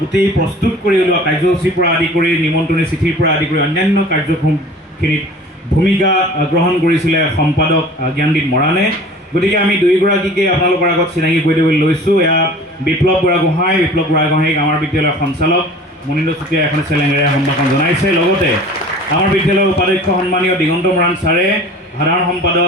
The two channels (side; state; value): both; normal; correlation 0.43